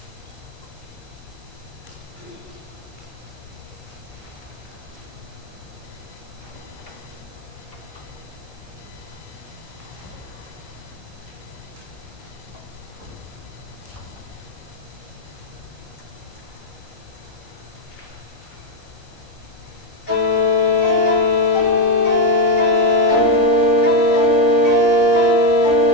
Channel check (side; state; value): both; normal; correlation 0.03